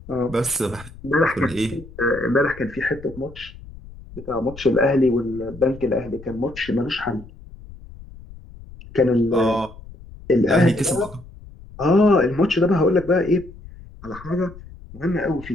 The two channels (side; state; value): left; noise; rumble, 18 dB below the sound